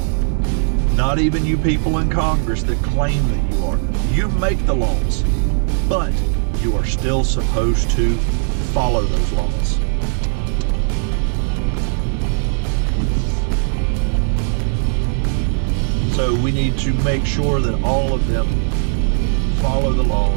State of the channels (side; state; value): left; silent; digital silence